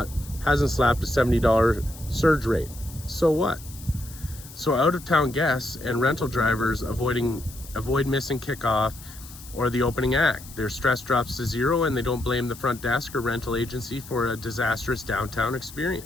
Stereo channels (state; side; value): noise; left; hiss, 17 dB below the sound